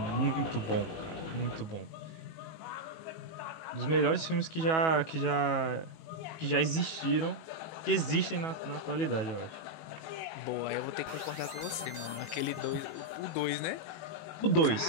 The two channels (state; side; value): late; right; 18 ms